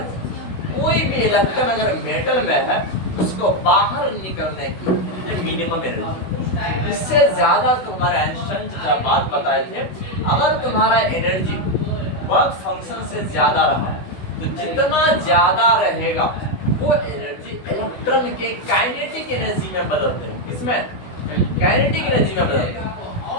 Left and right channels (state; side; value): late; right; 16 ms